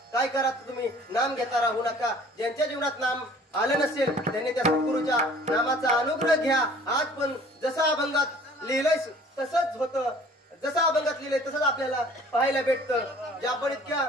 काय करा तुम्ही नाम घेता राहू नका. ज्यांच्या जीवनात नाम आलं नसेल त्यांनी त्या सद्गुरूच्या नामाचा अनुग्रह घ्या. आज पण जसं अभंगात लिहिलंय तसंच होतं, जसं अभंगात लिहिलंय तसंच आपल्याला पाहायला भेटतं. जे आपण इतक्या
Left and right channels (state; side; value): normal; both; correlation 0.51